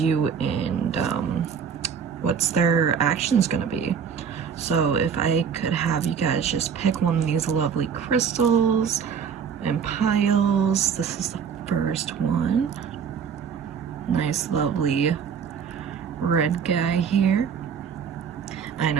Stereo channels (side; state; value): left; quieter; 7.0 dB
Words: and what's their actions gonna be. So if I could have you guys just pick one of these lovely crystals and piles. This is the first one. Nice lovely red guy here. I